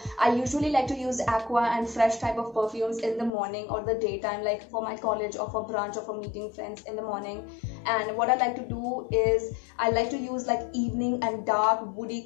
I usually like to use Aqua and Fresh type of perfumes in the morning or the daytime, like for my college or for brunch or for meeting friends in the morning. And what I like to do is I like to use like evening and dark woody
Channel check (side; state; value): right; drops out; at 3.3 s